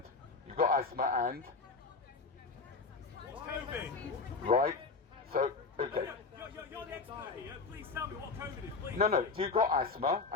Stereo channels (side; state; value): right; quieter; 4.3 dB